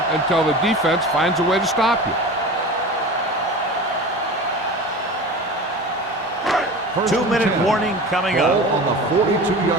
until the defense finds a way to stop you. 2-minute warning coming Ball up. on the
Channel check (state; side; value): normal; both; correlation 0.34